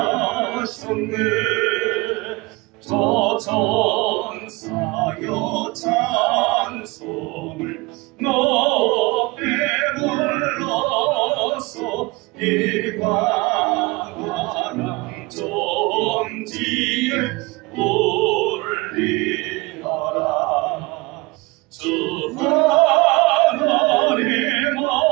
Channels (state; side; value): quieter; left; 24.4 dB